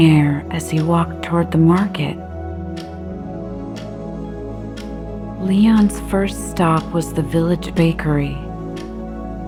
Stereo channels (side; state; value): both; identical; correlation 1.00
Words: air as he walked toward the market. Leon's first stop was the village bakery,